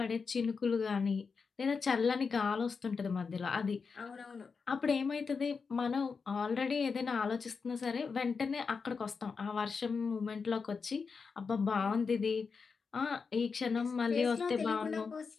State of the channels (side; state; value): right; quieter; 5.2 dB